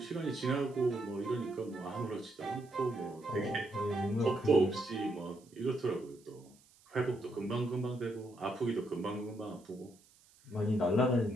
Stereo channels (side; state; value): right; noise; hiss, 28 dB below the sound